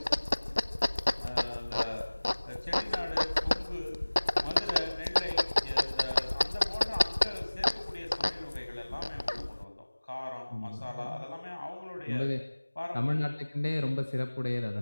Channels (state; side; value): inverted; both; correlation -1.00